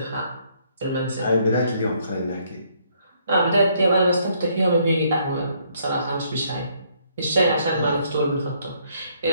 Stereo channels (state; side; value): inverted; both; correlation -0.68